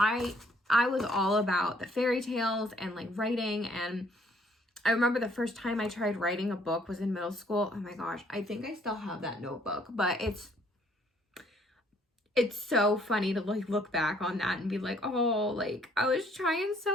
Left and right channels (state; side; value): normal; both; correlation 0.64